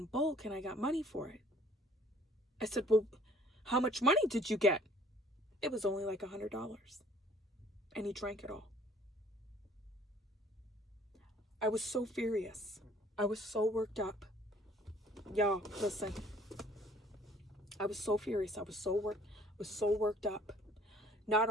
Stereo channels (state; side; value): normal; both; correlation 0.56